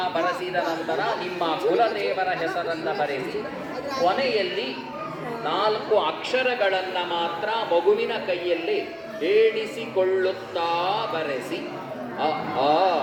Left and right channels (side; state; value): both; identical; correlation 1.00